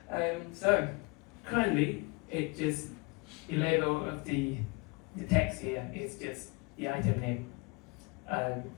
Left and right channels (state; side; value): quieter; right; 28.5 dB